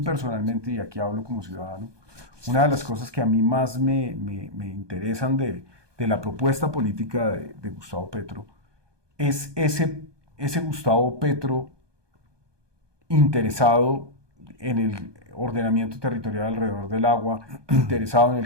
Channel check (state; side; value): late; left; 1.2 ms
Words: personalmente, y aquí hablo como ciudadano, una de las cosas que a mí más me interesan de la propuesta política de Gustavo Petro es ese Gustavo Petro interesado en el ordenamiento territorial alrededor del agua, interesado en